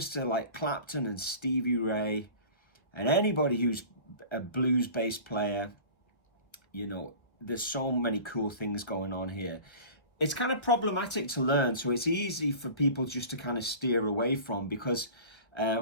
to like Clapton and Stevie Ray and anybody who's a blues bass player, there's so many cool things going on here. It's kind of problematic to learn, so it's easy for people just to kind of steer away from, because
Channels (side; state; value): right; late; 1.5 ms